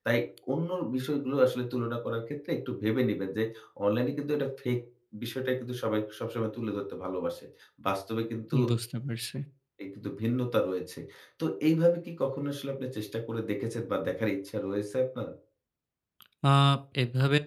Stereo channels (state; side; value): identical; both; correlation 1.00